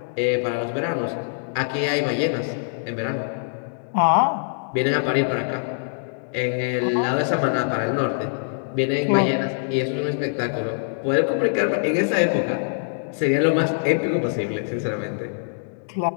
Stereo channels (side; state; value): right; silent; digital silence